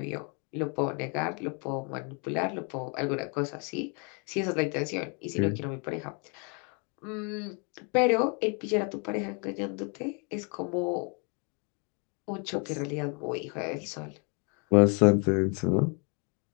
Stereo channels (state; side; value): quieter; right; 35.9 dB